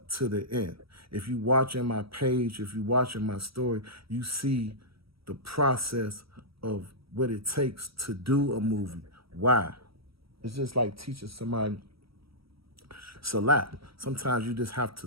to the end. If you watching my page, if you watching my story, you see the process of what it takes to do a movie. Why? It's just like teaching somebody Salat. Sometimes you just have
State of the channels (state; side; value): late; left; 0.75 ms